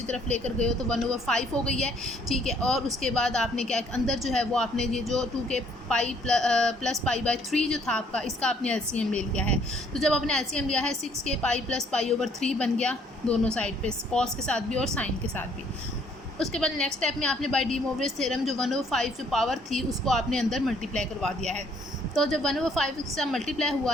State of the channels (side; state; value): both; normal; correlation 0.64